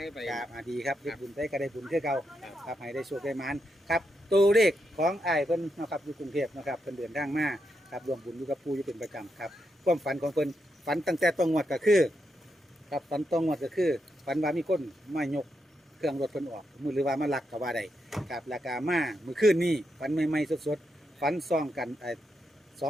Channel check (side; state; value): both; normal; correlation 0.83